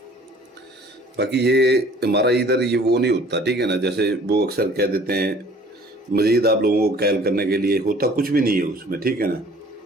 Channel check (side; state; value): both; normal; correlation 0.52